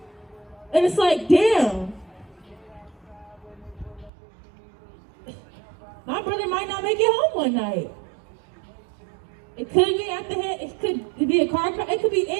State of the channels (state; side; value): drops out; left; at 4.1 s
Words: and it's like, damn. My brother might not make it home one night. It could be at the head, it could be a car crash, it could be